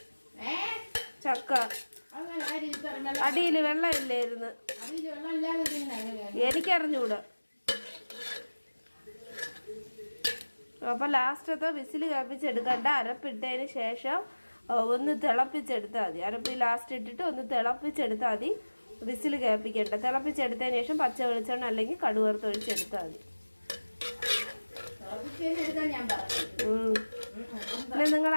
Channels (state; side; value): inverted; both; correlation -1.00